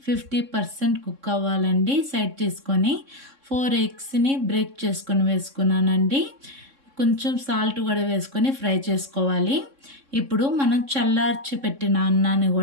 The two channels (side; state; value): left; late; 3.6 ms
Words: 50% కుక్ అవ్వాలండి. సైడ్ తీసుకొని 4 ఎగ్స్ని బ్రేక్ చేసుకొని వేసుకున్నానండి. కొంచెం సాల్ట్ కూడా వేసుకొని ఫ్రై చేసుకోవాలి. ఇప్పుడు మనం చల్లార్చి పెట్టిన అన్నాన్ని